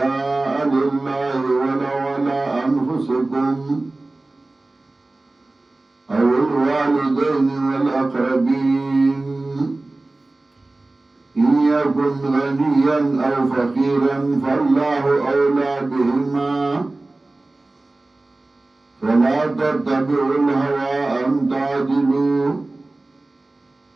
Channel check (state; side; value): quieter; left; 3.0 dB